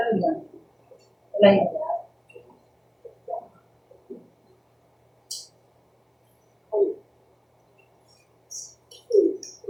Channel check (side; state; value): both; identical; correlation 1.00